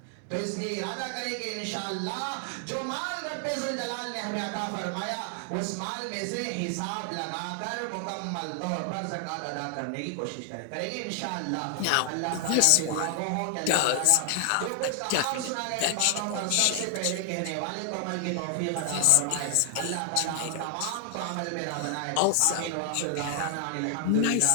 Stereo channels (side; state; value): both; different; correlation 0.00